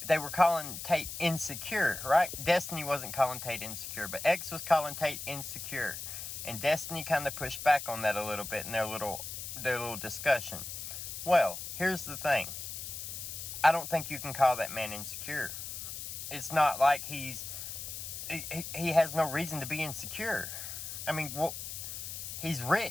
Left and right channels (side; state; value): left; noise; hiss, 7 dB below the sound